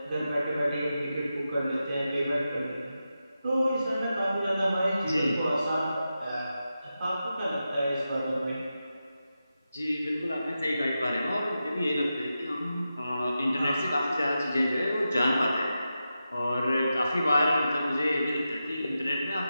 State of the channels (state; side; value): inverted; both; correlation -0.90